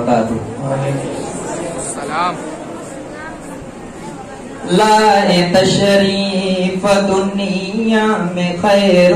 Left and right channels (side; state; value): both; identical; correlation 1.00